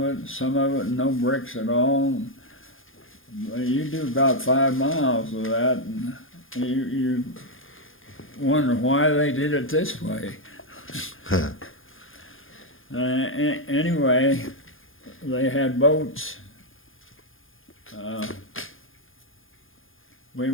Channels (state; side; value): late; right; 0.59 ms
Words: it no bricks at all. You do about 5 miles of that, and you wonder why they did it this way. Anyway, they had boats. We